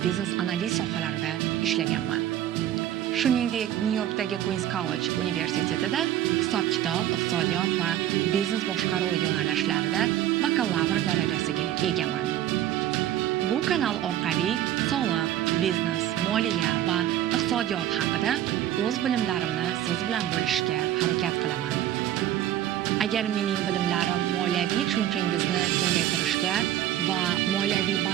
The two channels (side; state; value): left; quieter; 12.1 dB